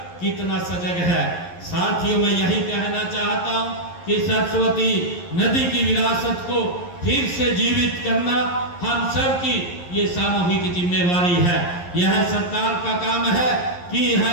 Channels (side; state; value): right; late; 11 ms